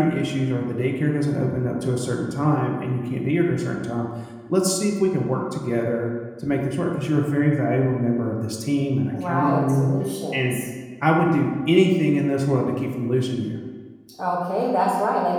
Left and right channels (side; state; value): both; identical; correlation 1.00